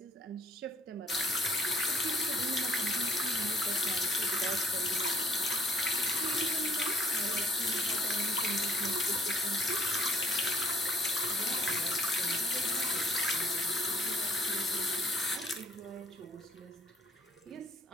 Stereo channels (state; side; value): normal; both; correlation 0.62